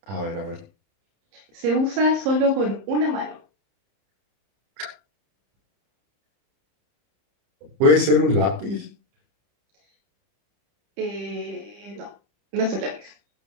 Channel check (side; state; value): left; late; 30 ms